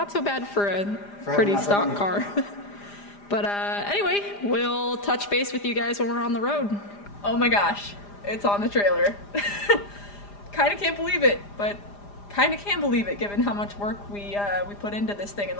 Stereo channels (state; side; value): late; right; 4.9 ms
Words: so bad for a pretty stock car. But anyway, we'll touch base with you guys when we're on the road. Oh my gosh, it's on the trailer. Kind of can't believe it, but kind of can believe it given how much work we put into this thing in